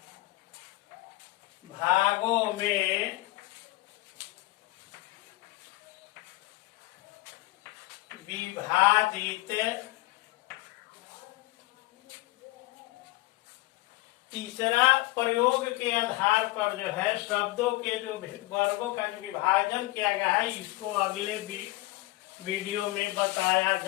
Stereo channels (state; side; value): quieter; right; 20.1 dB